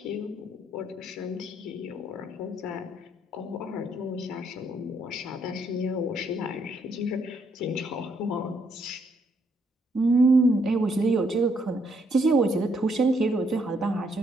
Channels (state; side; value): normal; both; correlation 0.72